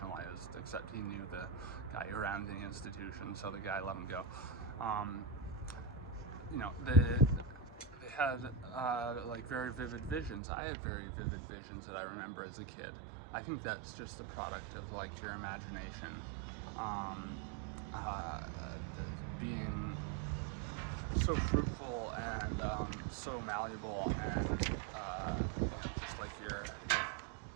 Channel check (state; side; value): drops out; left; at 10.4 s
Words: except he knew the guy who ran the institution, so the guy let him go. You know, they had like very vivid visions. I had very vivid visions that I remember as a kid. I think that's just the product of like your imagination being so fruitful and so malleable, and just like your